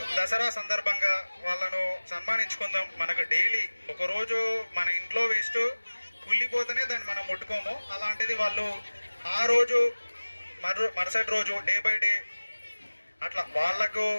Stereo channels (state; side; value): inverted; both; correlation -1.00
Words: దసరా సందర్భంగా వాళ్ళను సన్మానించుకుందాం. మనకు డైలీ ఒకరోజు మన ఇంట్లో వేస్ట్ కుళ్ళిపోతేనే దాన్ని మనం ముట్టుకోము, అలాంటిది వాళ్ళు ఆ రోజు మరుసటి రోజు డే బై డే అట్లా వాళ్లకు